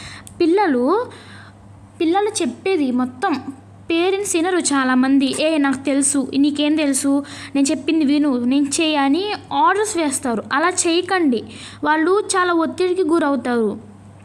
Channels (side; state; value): both; identical; correlation 1.00